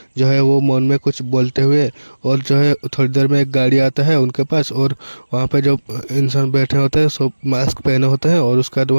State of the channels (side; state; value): both; inverted; correlation -1.00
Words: जो है वो मौन में कुछ बोलते हुए और जो है थोड़ी देर में एक गाड़ी आता है उनके पास और वहाँ पे जो इंसान बैठे होते हैं सब मास्क पहने होते हैं और उसके बाद